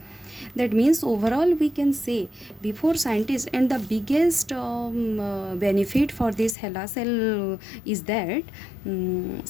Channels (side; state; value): right; drops out; at 6.6 s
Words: That means overall we can say, before scientists, and the biggest benefit for this HeLa cell is that